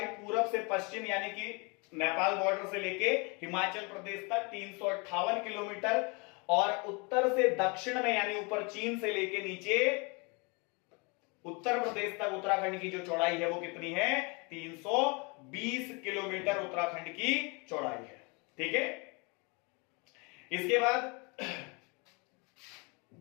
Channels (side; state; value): right; quieter; 30.7 dB